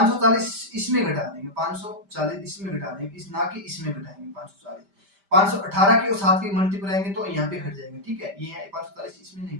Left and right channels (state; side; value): late; left; 5.1 ms